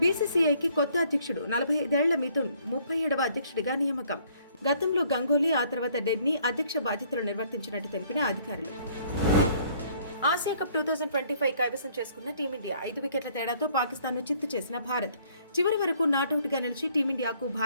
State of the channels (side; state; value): both; inverted; correlation -0.62